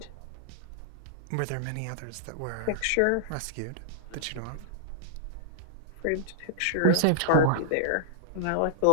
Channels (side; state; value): both; different; correlation -0.01